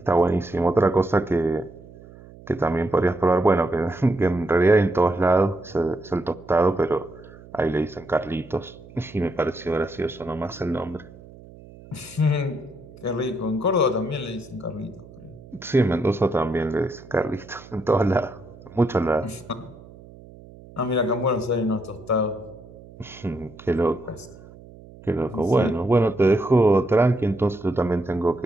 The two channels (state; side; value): noise; right; hum, 20 dB below the sound